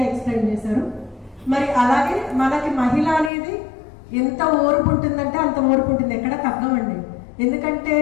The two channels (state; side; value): drops out; right; at 3.3 s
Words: ఎక్స్ప్లెయిన్ చేశారు. మరి అలాగే మనకి మహిళ అనేది ఎంత ఓర్పు ఉంటుందంటే అంత ఓర్పు ఉంటుంది, ఎక్కడ తగ్గమండి. ఎందుకంటే